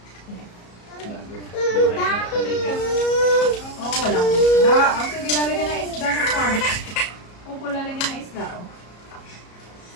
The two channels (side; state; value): right; late; 34 ms